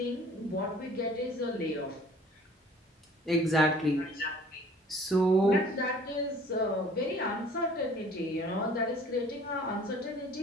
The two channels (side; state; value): both; normal; correlation 0.52